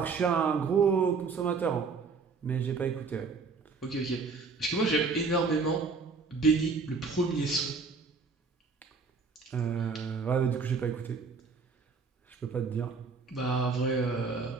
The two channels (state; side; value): quieter; left; 4.7 dB